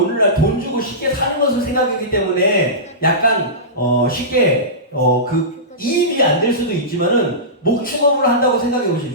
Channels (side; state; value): both; normal; correlation -0.20